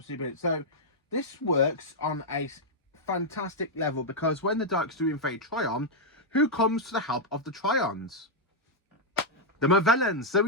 brilliant. So this works on a fantastic level, because when the Daleks do invade Trion, who comes to the help of the Trions? The Movellans. So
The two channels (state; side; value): normal; both; correlation -0.04